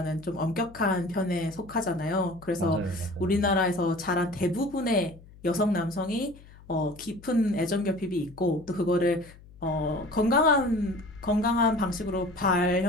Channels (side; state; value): left; noise; hum, 22 dB below the sound